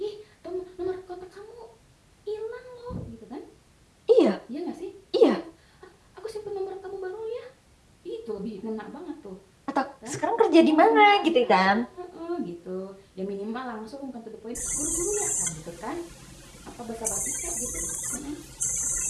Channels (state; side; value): identical; both; correlation 1.00